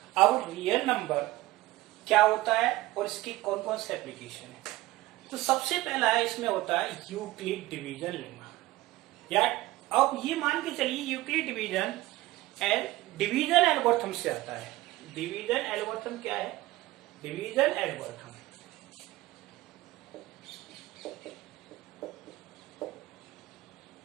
अब रियल नंबर क्या होता है और इसकी कौन कौन से एप्लीकेशन है। तो सबसे पहला है इसमें होता है यूक्लिड डिवीजन लेमा। या अब ये मान के चलिए यूक्लिड डिवीजन डिवीजन एल्गोरिथम से आता है। डिवीजन एल्गोरिथम क्या है? डिवीजन एल्गोरिथम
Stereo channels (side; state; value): left; quieter; 18.0 dB